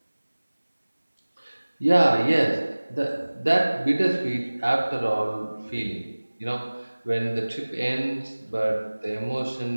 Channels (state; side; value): inverted; both; correlation -1.00